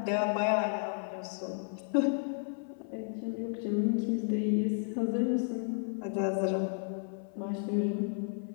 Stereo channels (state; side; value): silent; right; 55 dB below the other